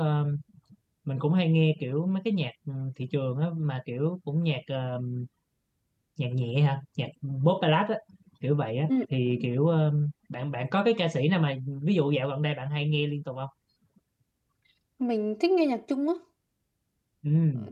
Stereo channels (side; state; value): both; identical; correlation 1.00